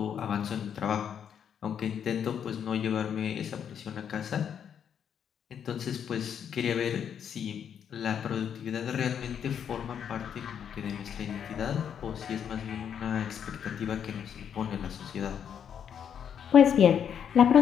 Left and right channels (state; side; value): quieter; right; 8.3 dB